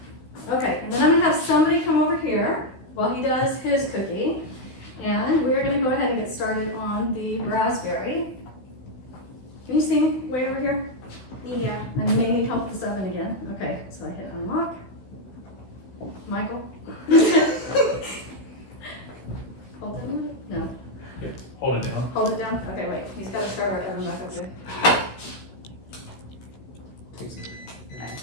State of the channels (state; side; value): late; right; 16 ms